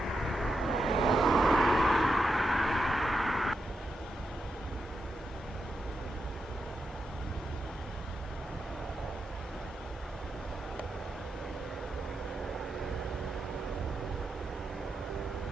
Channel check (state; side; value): normal; both; correlation 0.86